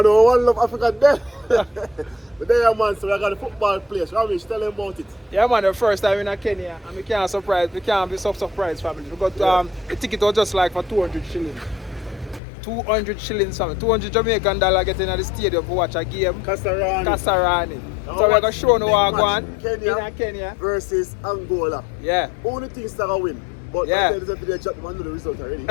to know One Love Africa there. But there, man, so we got a football place. Ramesh, tell them about it. Yeah, man, the first time in Kenya, and we can't be so surprised, family. We got the ticket was just like for 200 shillings. 200 shillings, family. 200 Jamaican dollar getting at the stadium to watch a game. Kasarani. So we're going to show no what going Kenya versus Angola. Yeah. Only things that are win. But yeah. There's a video chat, man, know the result already.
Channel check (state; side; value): drops out; right; at 12.4 s